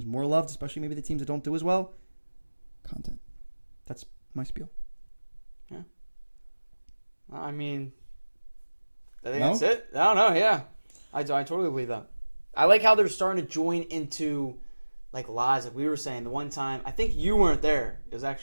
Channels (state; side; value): inverted; both; correlation -1.00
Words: more loved, especially maybe the teams that don't do as well, content. That's my spiel. Yeah. I mean, I think that's it. I don't know. Yeah, I totally believe that. I like how they're starting to join into like lives. Like we were saying the one time, I think you weren't there. It was